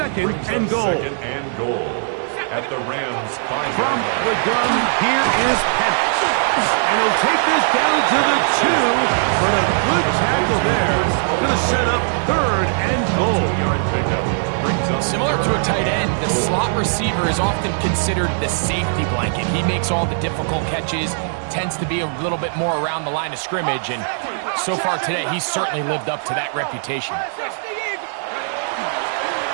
Brings and up goal. Second and goal. At the Rams' 5-yard From line. the gun, here is Penix. And he'll take this down to the 2, but a good tackle there. Going to set up 3rd and goal. 2-yard pickup. Brings up Similar to a tight end, the slot receiver is often considered the safety blanket. He makes all the difficult catches, tends to be a little bit more around the line of scrimmage, and so far today, he's certainly lived up to that reputation.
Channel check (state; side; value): silent; left; digital silence